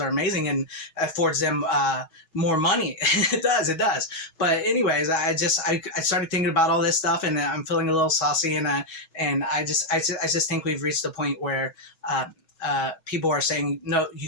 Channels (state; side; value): late; right; 6.2 ms